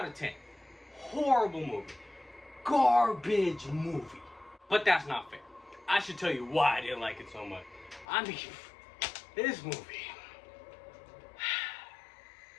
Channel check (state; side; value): drops out; right; at 8.1 s